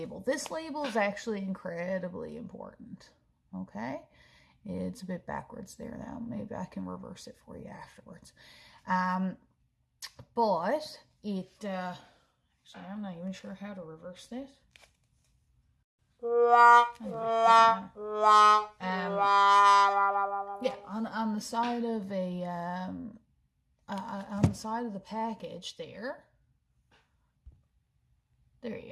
This label is actually incredibly important, okay? It's a bit backwards there now. Maybe I can reverse it for you afterwards. But it, actually, I'm not even sure how to reverse this. Yeah, on the side of a on the side of the package there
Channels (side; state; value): both; identical; correlation 1.00